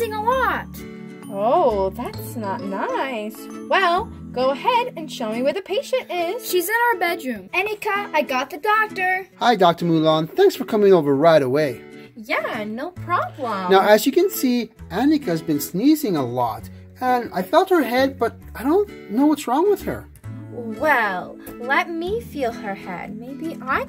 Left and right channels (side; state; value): both; identical; correlation 1.00